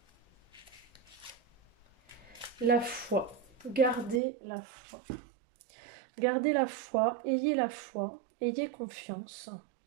La foi. Gardez la foi. Gardez la foi, ayez confiance.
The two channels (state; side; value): drops out; left; at 4.2 s